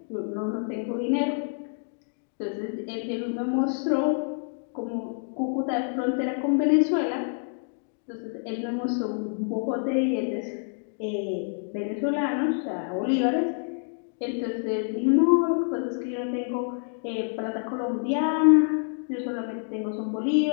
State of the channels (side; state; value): right; silent; 60 dB below the other